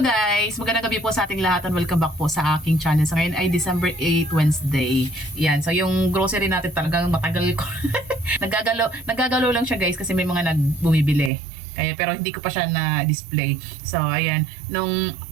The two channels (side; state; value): left; drops out; at 11.3 s